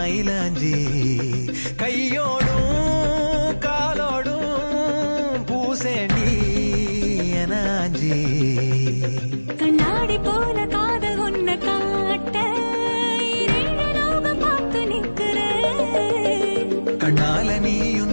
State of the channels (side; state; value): both; inverted; correlation -1.00